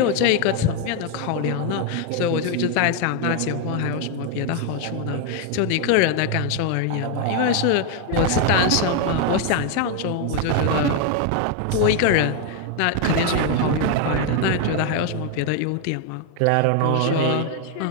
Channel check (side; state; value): both; different; correlation 0.01